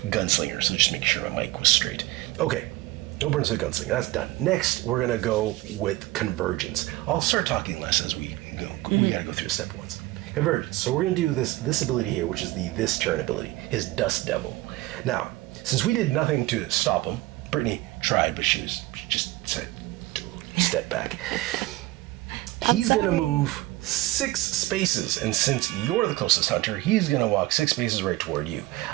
So just make sure my mic was straight. Okay, no burns for the gunslinger. That's done. Next, we're gonna go with convergence. I'll start talking less as we go. We gotta go through the step ones. Convergence. So we're gonna do this ability here, which is this turn ability, his Dust Devil. Now, since we did nothing to stop him, Brittany tried, but she just said, step back. He's gonna move 6 spaces, and since you're the closest hunter, he's gonna walk 6 spaces right toward you.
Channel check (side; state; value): left; quieter; 18.2 dB